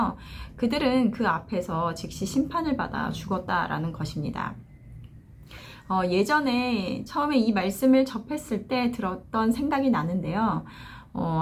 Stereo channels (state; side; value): identical; both; correlation 1.00